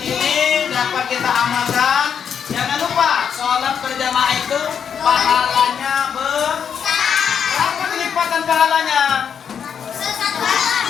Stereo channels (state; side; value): quieter; right; 7.6 dB